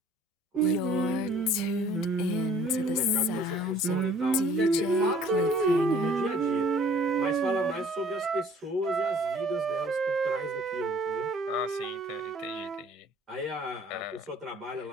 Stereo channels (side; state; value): both; normal; correlation 0.54